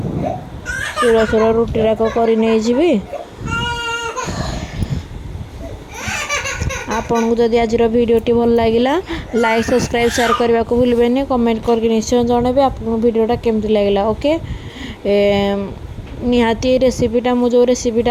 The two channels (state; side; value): identical; both; correlation 1.00